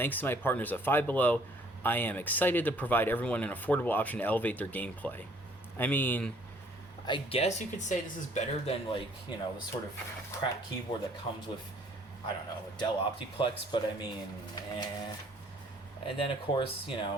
to my partners at Five Below, I am excited to provide everyone an affordable option to elevate their gameplay. I mean, I guess you could say this is better than, like, you know, the sort of crap keyboard that comes with, I don't know, a Dell Optiplex, but I mean, And then, of course, you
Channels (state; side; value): normal; both; correlation 0.60